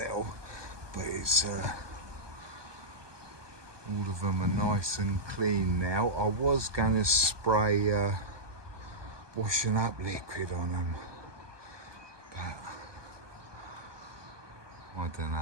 but it's all of them are nice and clean now. I was going to spray washing up liquid on them, but I don't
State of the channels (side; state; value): left; late; 1.2 ms